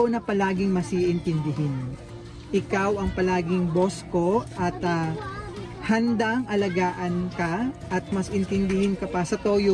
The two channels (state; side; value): identical; both; correlation 1.00